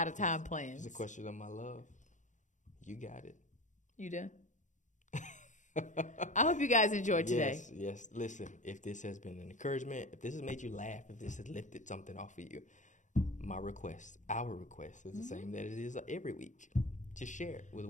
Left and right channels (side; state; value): right; late; 0.36 ms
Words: of time plans. It's a question of my love. You got it. You done? I hope you guys enjoyed today. Yes. Listen, if this has been an encouragement, if this has made you laugh, if this has lifted something off of you, our request is the same that it is every week. Just share it with